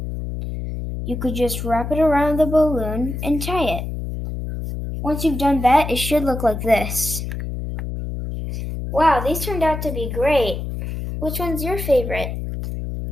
you could just wrap it around the balloon and tie it. Once you've done that, it should look like this. Wow, these turned out to be great. Which one's your favorite?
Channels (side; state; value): left; noise; hum, 5 dB below the sound